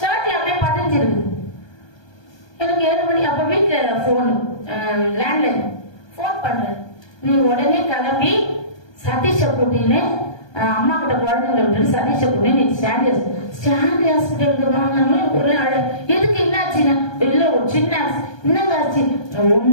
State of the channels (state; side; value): late; right; 1.2 ms